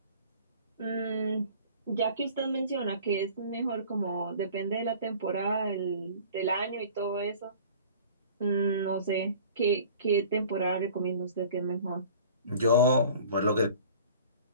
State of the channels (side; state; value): both; inverted; correlation -0.45